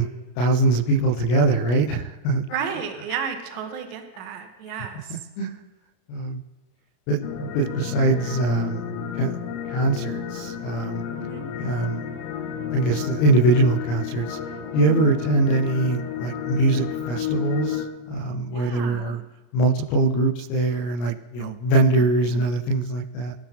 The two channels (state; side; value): late; right; 33 ms